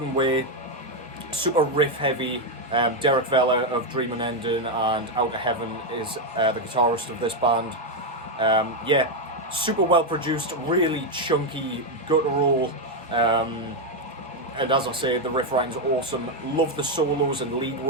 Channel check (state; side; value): normal; both; correlation 0.04